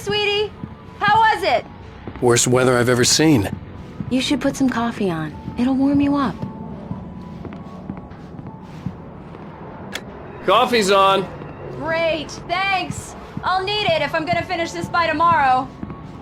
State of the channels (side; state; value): both; identical; correlation 1.00